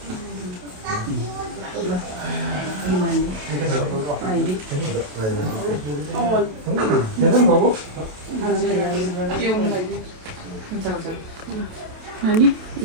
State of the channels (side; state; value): left; late; 27 ms